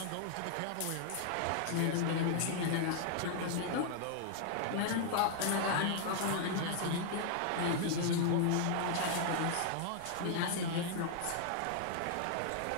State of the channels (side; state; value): both; different; correlation 0.00